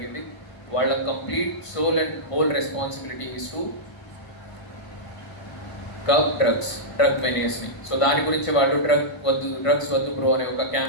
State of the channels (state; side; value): late; right; 1.5 ms